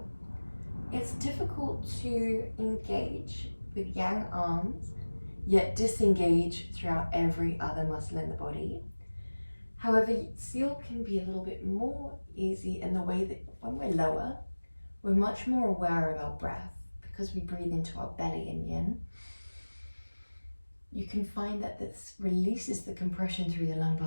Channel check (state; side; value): inverted; both; correlation -1.00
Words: It's difficult to engage with yang arms, yet disengage throughout every other muscle in the body. However, seal can be a little bit more easy in the way that when we're lower, we're much more aware of our breath because we breathe into our belly in yin. You can find that this releases the compression through the